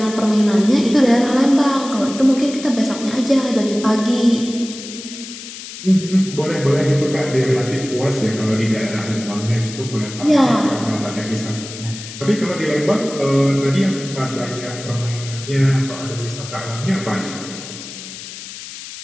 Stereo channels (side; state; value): left; noise; hiss, 12 dB below the sound